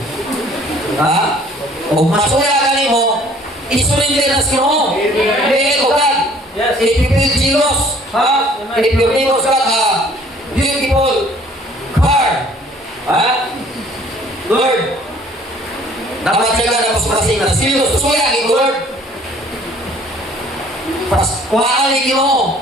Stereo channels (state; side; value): normal; both; correlation 0.55